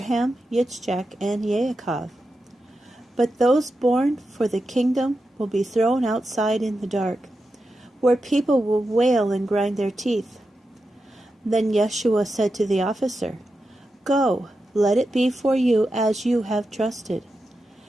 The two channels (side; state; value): both; normal; correlation 0.89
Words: Yitzchak, and Yaakov. But those born for the kingdom will be thrown outside in the dark, where people will wail and grind their teeth." Then Yeshua said to the officer, "Go, let it be for you as you have trusted."